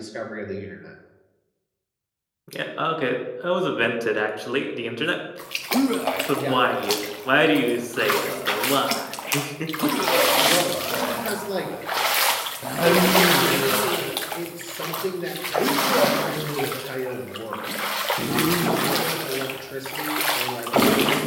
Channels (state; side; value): identical; both; correlation 1.00